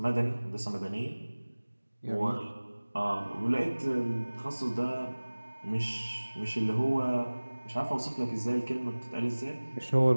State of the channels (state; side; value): inverted; both; correlation -1.00